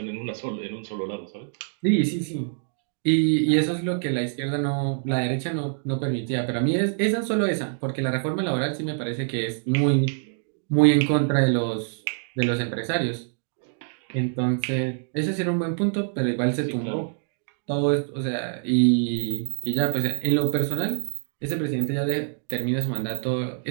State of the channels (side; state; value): left; silent; digital silence